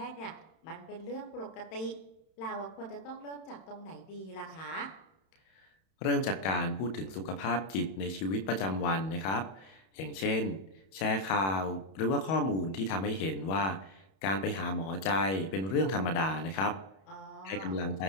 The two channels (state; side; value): late; right; 31 ms